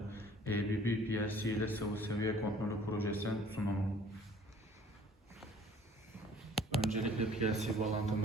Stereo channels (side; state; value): both; normal; correlation 0.53